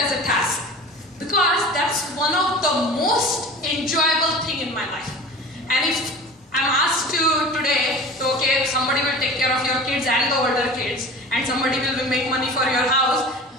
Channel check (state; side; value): normal; both; correlation 0.38